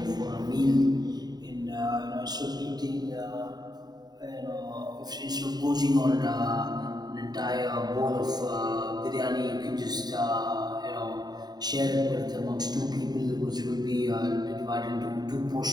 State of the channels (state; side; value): late; left; 0.20 ms